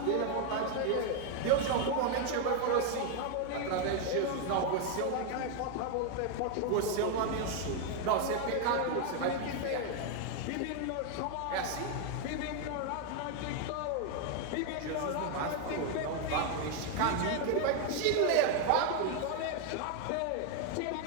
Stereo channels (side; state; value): both; different; correlation 0.01